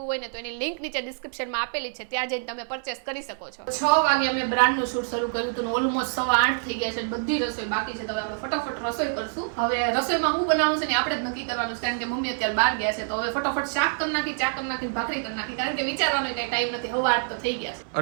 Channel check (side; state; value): left; silent; 57 dB below the other